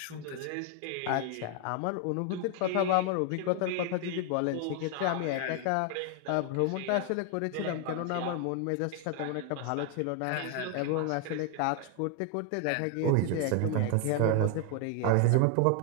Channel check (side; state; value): both; different; correlation 0.00